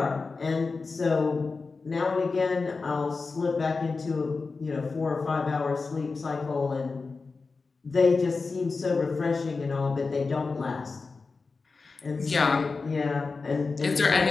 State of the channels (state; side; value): quieter; right; 4.2 dB